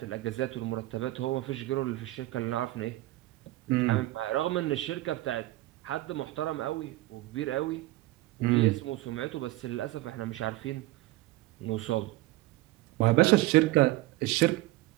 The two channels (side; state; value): left; quieter; 17.7 dB